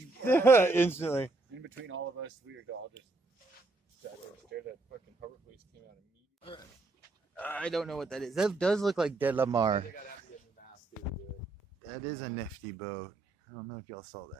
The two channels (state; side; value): quieter; left; 3.3 dB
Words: Instantly. In between all of us, we were all just sat there. That fucking harbor police came out immediately. I don't know what that is. That does look like Dead Lamar. They got after the mast to do it. That is a nifty boat. I don't know if y'all saw